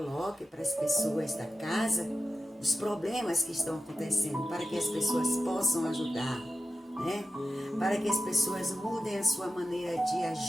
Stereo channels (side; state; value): both; normal; correlation 0.92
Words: para as pessoas da casa os problemas que estão acontecendo, para que as pessoas possam ajudar, né? Para que as pessoas mudem a sua maneira de